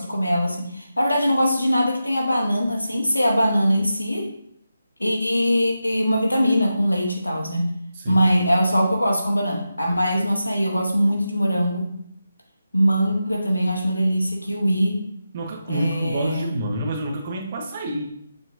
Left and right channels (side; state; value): both; inverted; correlation -0.90